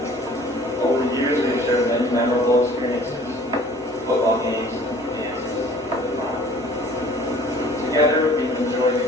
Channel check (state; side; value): normal; both; correlation 0.51